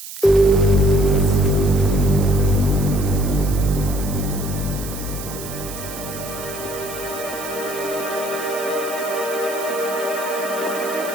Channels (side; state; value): right; noise; hiss, 11 dB below the sound